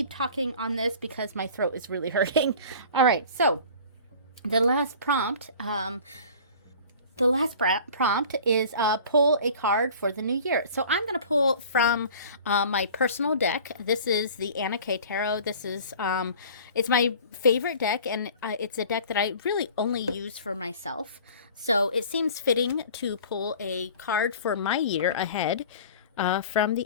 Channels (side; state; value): both; inverted; correlation -0.44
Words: talking on this because my throat is really hurting. All right, so the last prompt is pull a card for the new year. So I'm going to pull from my personal deck. This is the Anna K Tarot. This is, it's my favorite deck, and it's a deck that I really only use for myself. So it seems fitting to pull a card for my year ahead from